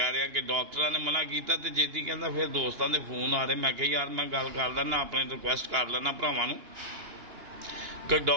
रहा कि डॉक्टरां ने मना किया तो जेती कहंदा फिर दोस्तां दे फोन आ रहे। मैं कहा यार मैं गल कर लैना, अपने रिक्वेस्ट कर लैना भरावां नूं कि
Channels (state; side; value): late; left; 2.8 ms